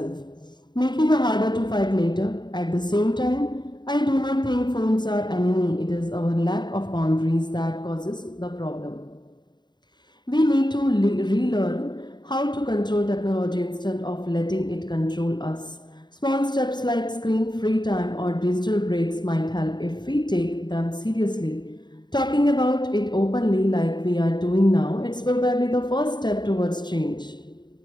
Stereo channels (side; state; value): right; late; 0.21 ms